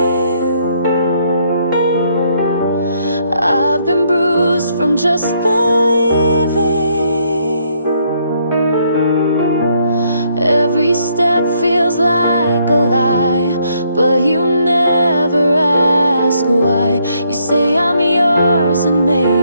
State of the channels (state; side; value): inverted; both; correlation -0.71